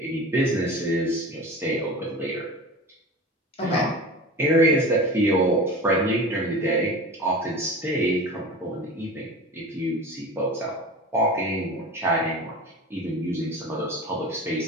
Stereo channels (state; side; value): normal; both; correlation 0.34